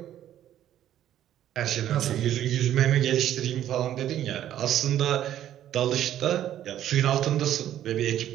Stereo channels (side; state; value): left; quieter; 11.6 dB